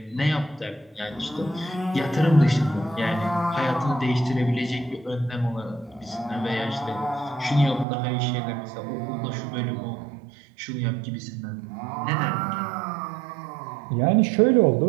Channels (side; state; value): left; drops out; at 7.9 s